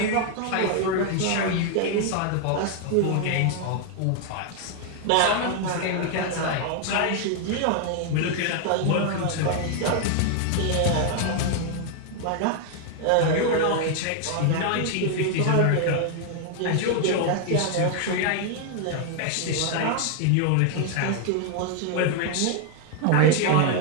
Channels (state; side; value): different; both; correlation 0.00